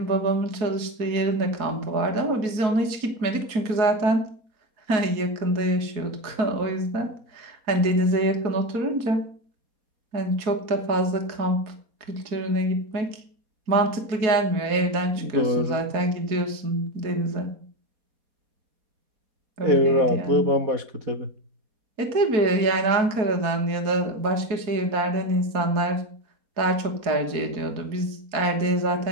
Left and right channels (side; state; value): left; late; 4.7 ms